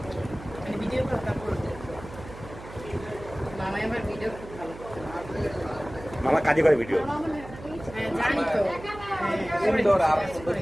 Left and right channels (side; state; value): right; noise; hum, 15 dB below the sound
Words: মানে ভিডিও কল তারপর মামা আমার ভিডিও খুব ভালো করে। মামা কাজে করে ভিডিও হ্যাঁ জানি তো সুন্দর আপনি সুন্দর